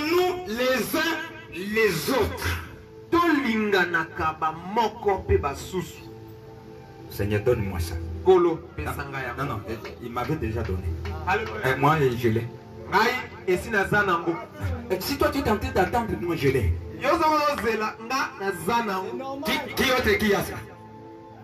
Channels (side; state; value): both; identical; correlation 1.00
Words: les uns les autres. Seigneur, donne-moi ça. Non, non, il m'avait déjà donné. Moi, je l'ai. Si toi tu es tenté d'attendre, moi je l'ai. Qui autre qui a ça?